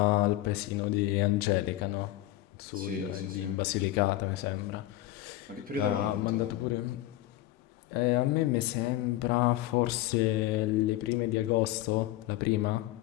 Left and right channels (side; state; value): right; quieter; 15.4 dB